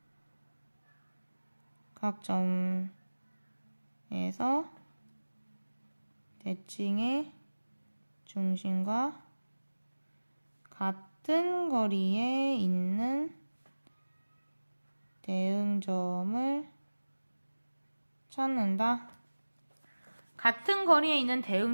점에서 대칭의 중심과 같은 거리에 있는 대응점을 찾는다. 같은 거리에 있는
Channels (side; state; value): both; inverted; correlation -1.00